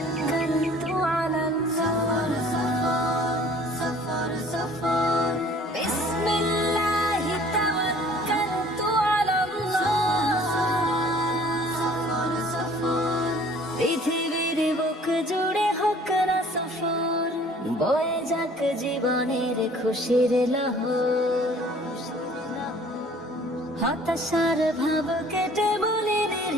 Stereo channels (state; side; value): normal; both; correlation 0.52